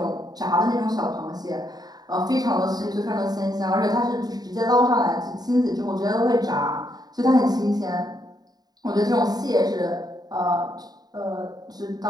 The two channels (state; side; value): late; left; 0.19 ms